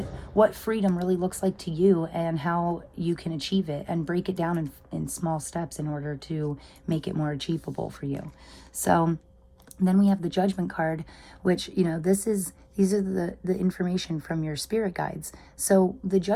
freedom really looks like to you and how you can achieve it, and break it down in small steps in order to make it more achievable for you. So then we have the Judgment card, which, you know, these are the information from your spirit guides. So the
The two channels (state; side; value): identical; both; correlation 1.00